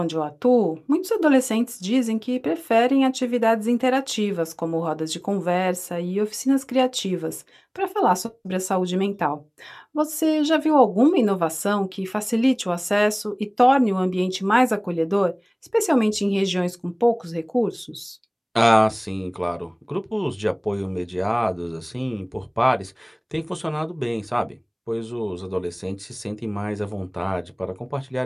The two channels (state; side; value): identical; both; correlation 1.00